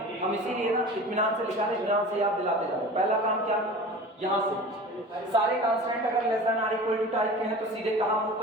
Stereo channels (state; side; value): normal; both; correlation 0.38